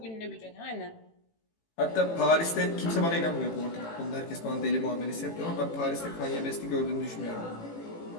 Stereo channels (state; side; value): late; right; 18 ms